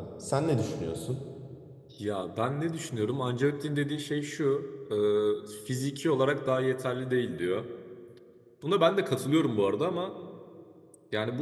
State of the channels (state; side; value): identical; both; correlation 1.00